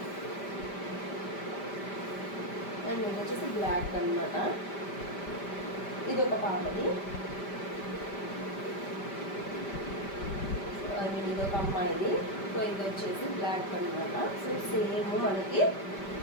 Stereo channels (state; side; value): late; right; 5.1 ms